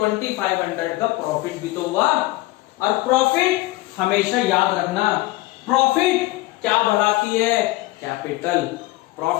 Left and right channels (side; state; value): right; quieter; 19.3 dB